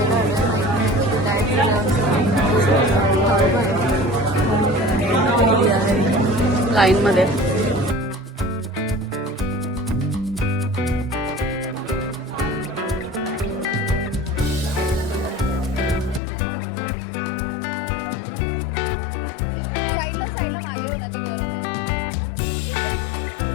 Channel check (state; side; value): drops out; right; at 16.2 s